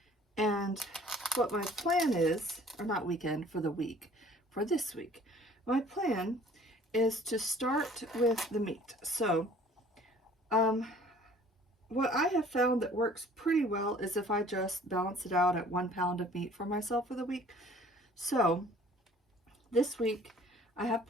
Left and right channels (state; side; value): normal; both; correlation 0.53